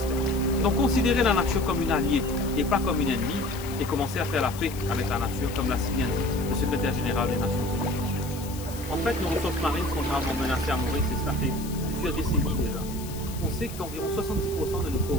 Donc considérer la nature comme une alliée et pas comme une ennemie, et commencer à faire la paix avec la nature, comme l'a si bien dit le secrétaire général des Nations Unies. En fait, nos ressources marines sont gravement menacées à Maurice, et cela fait plusieurs décennies déjà. On sait qu'environ 70% de nos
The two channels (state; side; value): noise; left; hiss, 14 dB below the sound